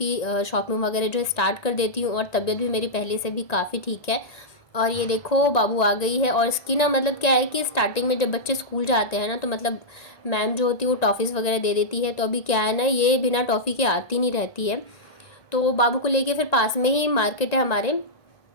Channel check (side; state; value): right; late; 1.9 ms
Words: शॉपिंग वगैरह जो है स्टार्ट कर देती हूँ। और तबीयत भी मेरी पहले से भी काफ़ी ठीक है। और ये देखो बाबू आ गई है। और इसकी ना मतलब क्या है कि स्टार्टिंग में जब बच्चे स्कूल जाते हैं ना, तो मतलब मैम जो होती है वो टॉफ़ीज़ वगैरह दे देती है। तो अभी क्या है ना, ये बिना टॉफ़ी के आती नहीं रहती है। तो बाबू को लेके फिर पास में ही मार्केट है हमारे।